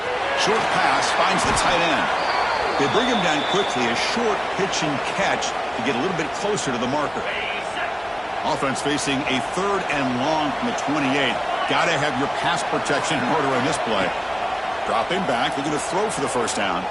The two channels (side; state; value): both; identical; correlation 1.00